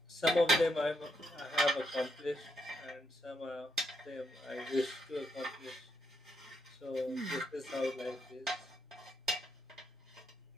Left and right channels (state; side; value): normal; both; correlation 0.78